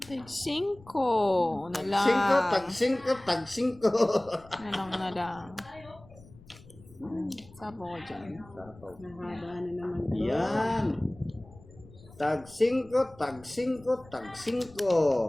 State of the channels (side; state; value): left; noise; rumble, 22 dB below the sound